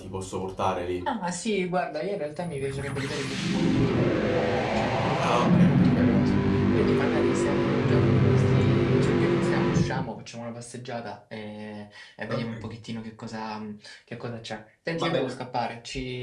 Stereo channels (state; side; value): identical; both; correlation 1.00